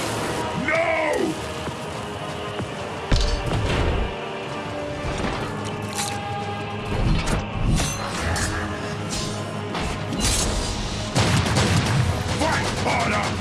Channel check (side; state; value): both; identical; correlation 1.00